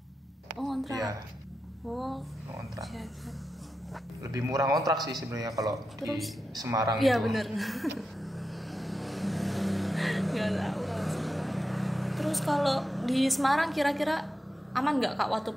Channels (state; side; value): normal; both; correlation 0.89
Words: Oh kontrak. Iya, Oh, ngontrak. siap. Lebih murah ngontrak sih sebenarnya kalau di Terus, Semarang iya itu. bener. Nggak tahu kalau Semarang. Terus kalau di Semarang kira-kira aman nggak Kak waktu